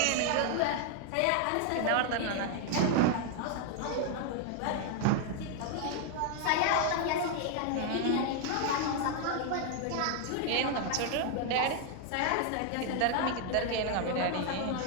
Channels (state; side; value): different; both; correlation 0.00